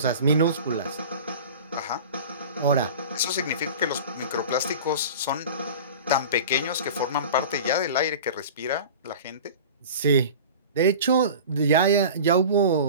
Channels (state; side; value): inverted; both; correlation -0.36